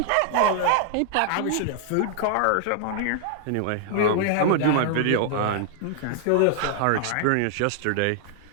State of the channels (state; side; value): different; both; correlation 0.00